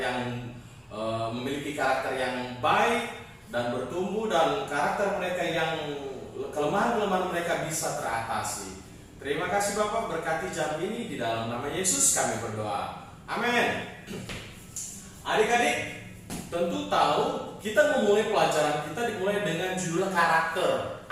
memiliki karakter yang baik dan bertumbuh, dan karakter mereka yang kelemahan-kelemahan mereka bisa teratasi. Terima kasih Bapak, berkati jam ini di dalam nama Yesus kami berdoa. Amin. Adik-adik tentu tahu kita memulai pelajaran kita dimulai dengan judul karakter.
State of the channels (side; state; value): both; identical; correlation 1.00